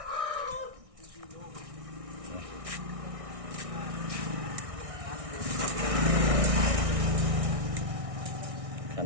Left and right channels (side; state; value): left; late; 1.6 ms